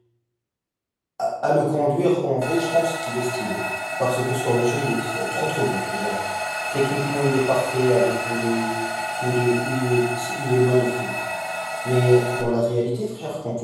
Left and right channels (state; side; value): identical; both; correlation 1.00